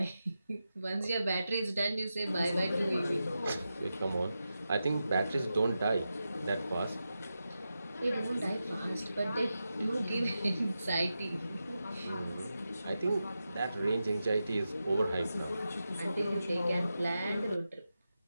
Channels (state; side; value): inverted; both; correlation -0.90